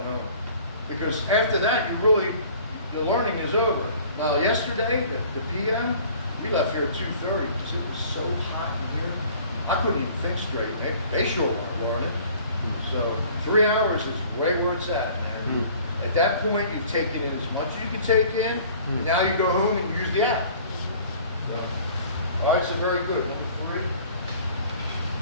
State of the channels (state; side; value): inverted; both; correlation -0.50